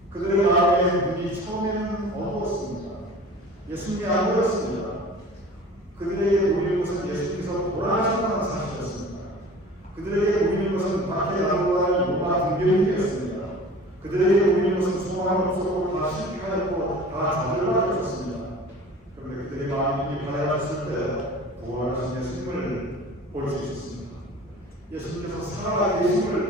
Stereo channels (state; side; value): normal; both; correlation 0.41